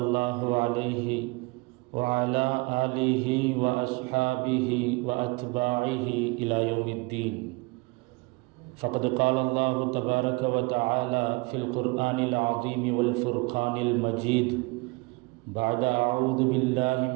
الله عليه وعلى آله وأصحابه وأتباعه إلى يوم الدين. فقد قال الله تبارك وتعالى في القرآن العظيم والفرقان المجيد بعد أعوذ بالله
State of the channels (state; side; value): quieter; left; 26.1 dB